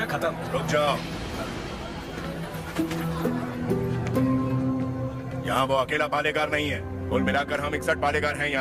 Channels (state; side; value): identical; both; correlation 1.00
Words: खत्म। रुक जाओ। यहाँ वो अकेला पालेगार नहीं है, कुल मिलाकर हम 61 पालेगार हैं।